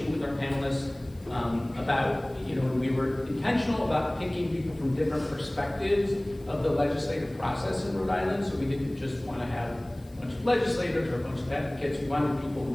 with our panelists about, we were intentional about picking people from different perspectives of the legislative process in Rhode Island, so we didn't just want to have a bunch of legislators or a bunch of advocates. We wanted people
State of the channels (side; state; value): left; noise; hiss, 28 dB below the sound